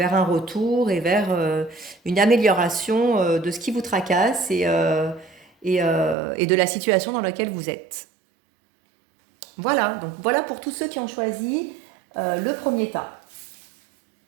retour et vers une amélioration de ce qui vous tracasse et de la situation dans laquelle vous êtes. Voilà, donc voilà pour tous ceux qui ont choisi le premier tas.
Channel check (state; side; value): drops out; left; at 6.2 s